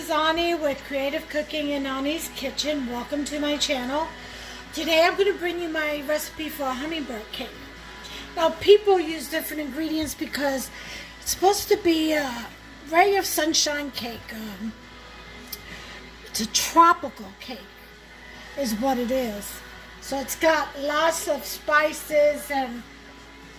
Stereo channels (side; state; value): both; identical; correlation 1.00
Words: Ani with Creative Cooking in Ani's Kitchen. Welcome to my channel. Today I'm going to bring you my recipe for a hummingbird cake. Now people use different ingredients because it's supposed to be a ray of sunshine cake. It's a tropical cake is what it is. So it's got lots of spices and